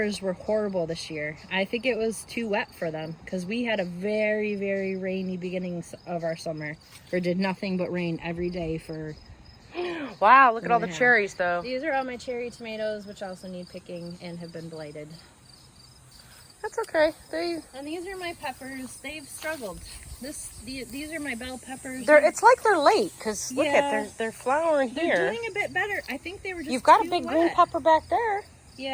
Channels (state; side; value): identical; both; correlation 1.00